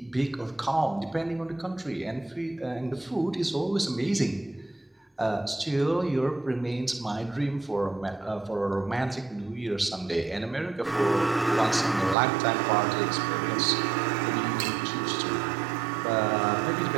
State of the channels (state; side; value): drops out; left; at 12.2 s